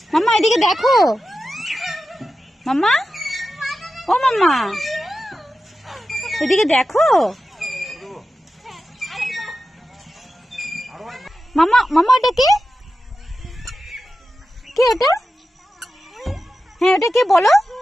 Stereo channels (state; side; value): normal; both; correlation 0.92